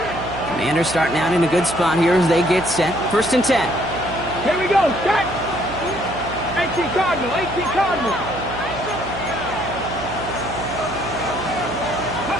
Commanders starting out in a good spot here as they get set. 1st and 10. Here we go. Set. 18 Cardinal.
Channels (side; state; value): right; noise; hum, 11 dB below the sound